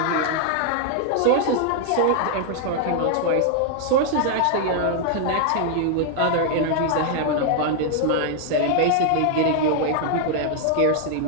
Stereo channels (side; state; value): both; different; correlation 0.00